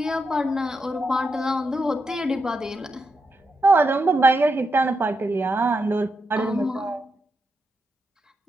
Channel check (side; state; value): both; normal; correlation 0.84